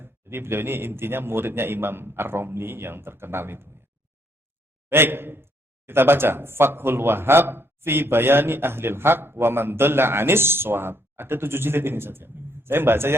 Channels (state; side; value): normal; both; correlation 0.70